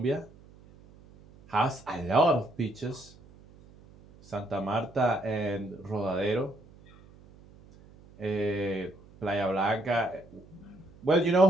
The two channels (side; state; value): right; noise; hum, 24 dB below the sound